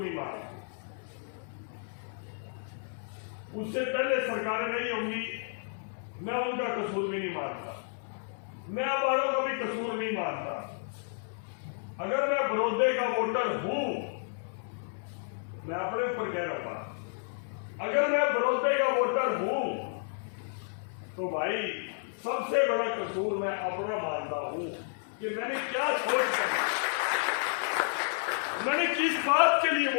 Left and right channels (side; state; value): right; silent; 57 dB below the other